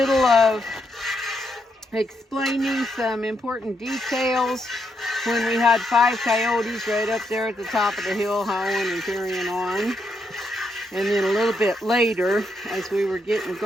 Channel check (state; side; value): normal; both; correlation 0.79